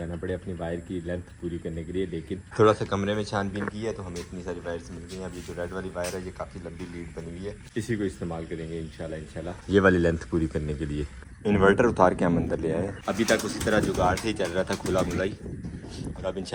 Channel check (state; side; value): identical; both; correlation 1.00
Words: पड़े अपनी वायर की लेंथ पूरी करने के लिए, लेकिन थोड़ा सा कमरे में छानबीन की है तो हमें इतनी सारी वायर्स मिल गई हैं। अभी जो रेड वाली वायर है ये काफ़ी लंबी लीड बनी हुई है, इसी को इस्तेमाल करेंगे इंशाल्लाह ये वाली लेंथ पूरी करने के लिए। इन्वर्टर उतार के हम अंदर ले आए। अभी तक उसी तरह जुगाड़ से ही चल रहा था, खुला खुला ही, और अब